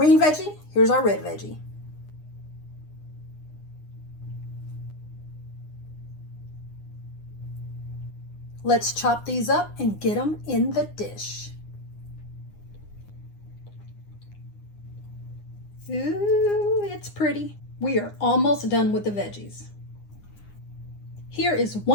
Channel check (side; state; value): right; late; 9.8 ms